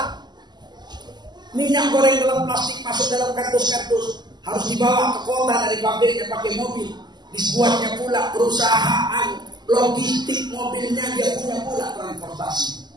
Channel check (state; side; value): late; left; 0.21 ms